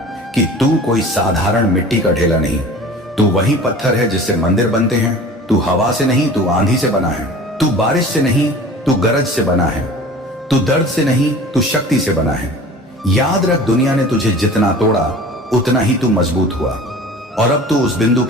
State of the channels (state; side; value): normal; both; correlation 0.41